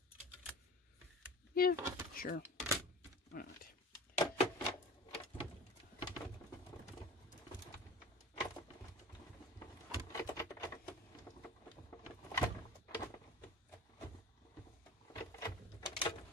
Yeah, sure. Why not?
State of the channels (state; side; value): normal; both; correlation 0.39